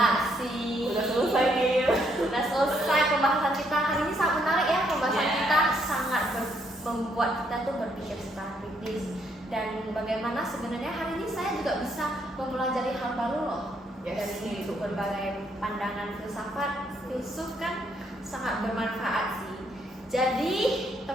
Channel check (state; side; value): normal; both; correlation 0.72